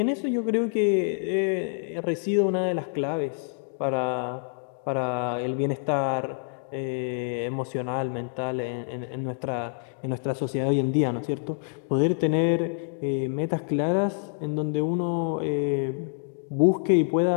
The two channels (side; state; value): right; silent; digital silence